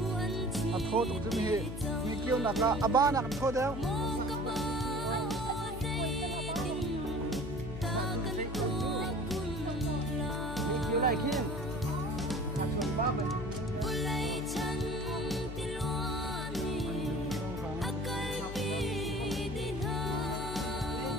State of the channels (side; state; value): left; noise; hum, 9 dB below the sound